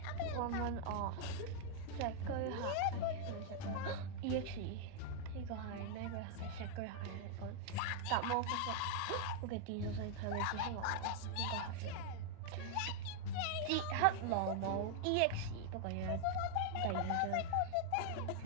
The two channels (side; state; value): both; different; correlation 0.00